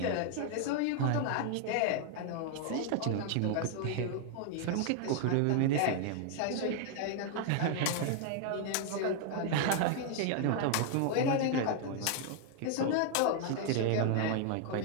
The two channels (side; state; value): both; different; correlation 0.00